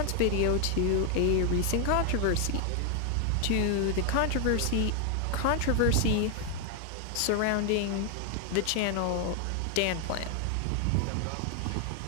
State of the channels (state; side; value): different; both; correlation 0.00